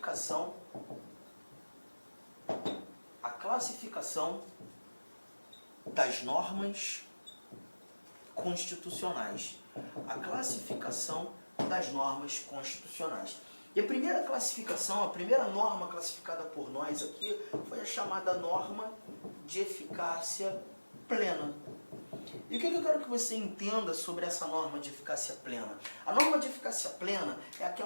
das normas constitucionais. A classificação das normas constitucionais. E a primeira classificação, a primeira norma classificada por nós aqui foi a chamada norma de eficácia plena. E o que eu quero que você entenda sobre essa norma de eficácia plena? A norma de eficácia plena é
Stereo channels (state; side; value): inverted; both; correlation -1.00